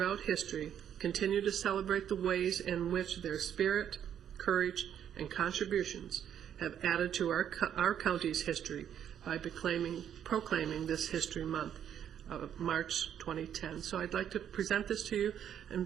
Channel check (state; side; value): quieter; left; 9.4 dB